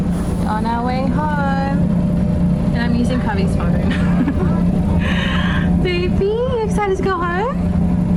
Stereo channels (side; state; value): both; identical; correlation 1.00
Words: On our way home. And I'm using Kavi's phone. Baby, you excited to go home?